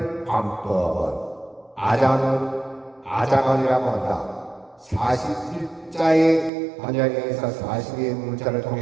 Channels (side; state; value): left; drops out; at 6.5 s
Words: 관법은 아자간이라고 한다. 41자의 반야에서 42의 문자를